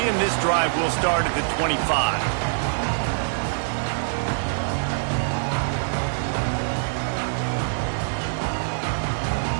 and this drive will start at the 25.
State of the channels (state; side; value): silent; left; digital silence